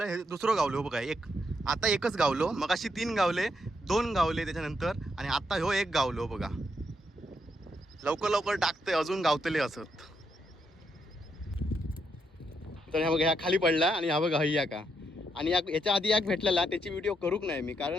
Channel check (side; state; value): both; normal; correlation 0.78